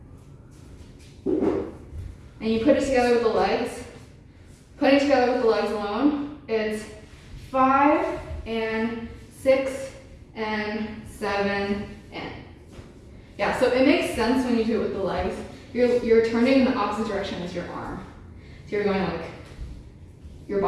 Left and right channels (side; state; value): both; identical; correlation 1.00